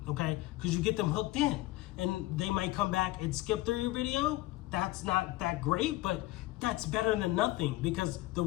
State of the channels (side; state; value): right; quieter; 17.8 dB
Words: okay? Because you get them hooked in, and they might come back and skip through your video. That's not that great, but that's better than nothing, because the